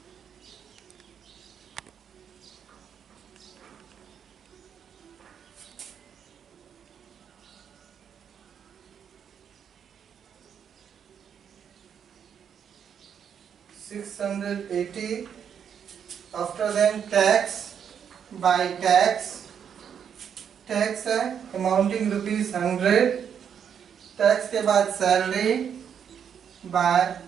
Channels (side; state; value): left; quieter; 8.0 dB